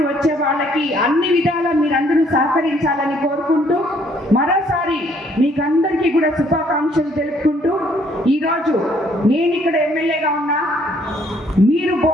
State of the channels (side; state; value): both; normal; correlation 0.65